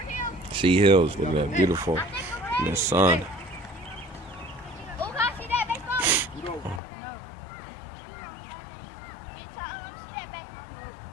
Sea Hills. Look at that, beautiful. In the sun.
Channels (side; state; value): right; drops out; at 6.8 s